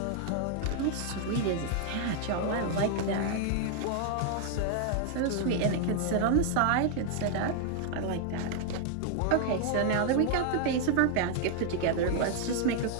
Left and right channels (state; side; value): different; both; correlation 0.00